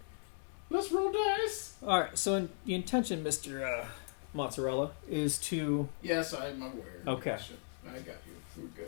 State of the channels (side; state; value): right; silent; digital silence